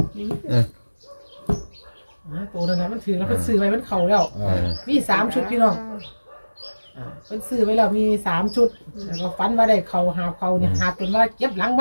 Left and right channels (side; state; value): both; inverted; correlation -1.00